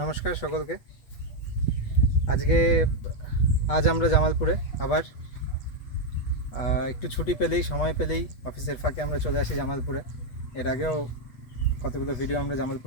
সকলকে। আজ আমরা জামালপুরে আবার একটু ছুটি পেলেই সময় পেলেই অফিসের ফাঁকে আমরা চলে আসি জামালপুরে। এর আগেও কতগুলো ভিডিও আমরা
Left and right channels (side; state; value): right; late; 8.3 ms